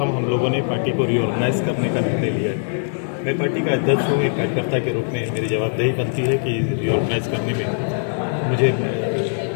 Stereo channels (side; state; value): right; silent; digital silence